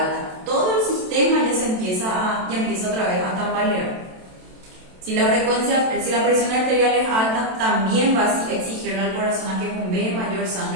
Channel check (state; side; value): late; left; 27 ms